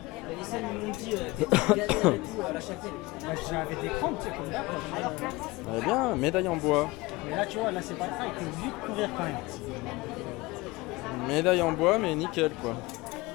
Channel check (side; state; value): right; quieter; 21.8 dB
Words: scènes m'ont dit à la Châtelle. J'avais des crampes, tu sais, comme là. Alors clairement, c'est Elle est bien, médaille en bois. Mais là, tu vois, là, c'est pas le cas, il peut vite courir quand même. Médaille en bois, mais nickel quoi.